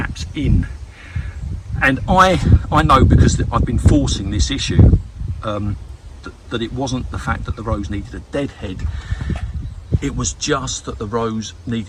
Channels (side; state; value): both; identical; correlation 1.00